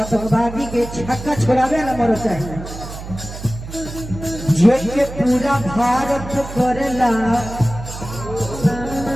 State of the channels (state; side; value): noise; right; hum, 11 dB below the sound